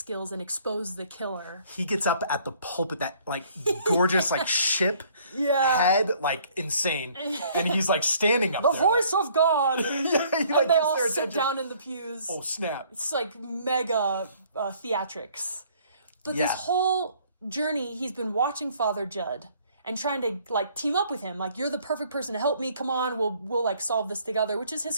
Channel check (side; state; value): both; inverted; correlation -0.60